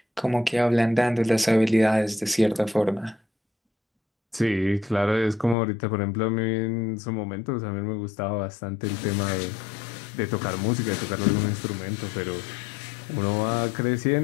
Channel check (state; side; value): drops out; right; at 5.6 s